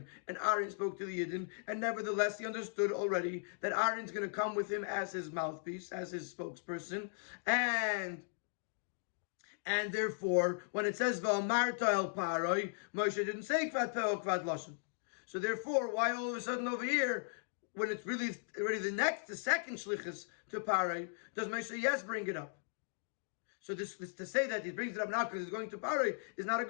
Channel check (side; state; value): right; silent; digital silence